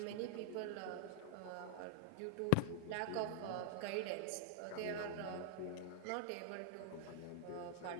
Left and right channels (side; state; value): both; different; correlation 0.00